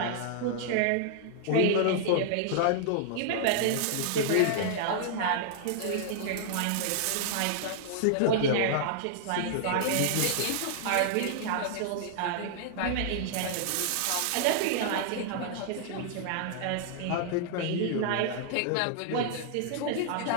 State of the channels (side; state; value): both; different; correlation -0.01